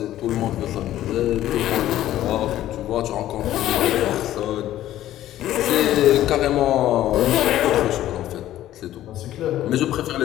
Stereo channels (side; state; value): right; quieter; 13.3 dB